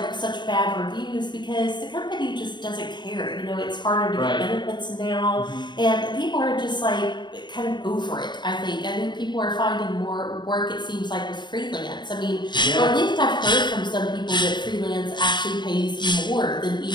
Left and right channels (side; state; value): right; late; 0.22 ms